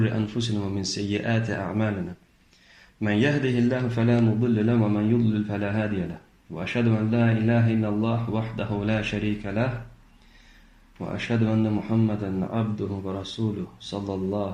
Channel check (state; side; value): identical; both; correlation 1.00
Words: أنفسنا ومن سيئات أعمالنا من يهده الله فلا مضل له ومن يضلل فلا هادي له وأشهد أن لا إله إلا الله وحده لا شريك له وأشهد أن محمدا عبده ورسوله صلى